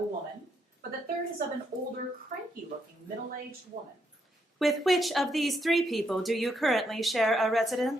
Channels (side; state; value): both; normal; correlation 0.77